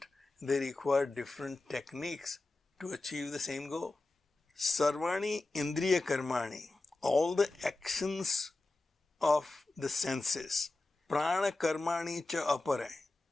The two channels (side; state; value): right; quieter; 3.1 dB